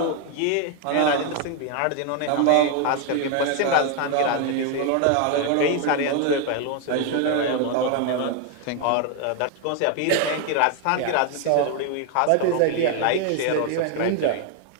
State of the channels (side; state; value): both; different; correlation 0.01